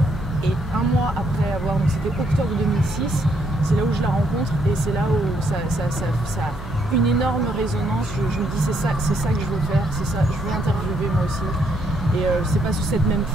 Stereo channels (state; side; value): normal; both; correlation 0.72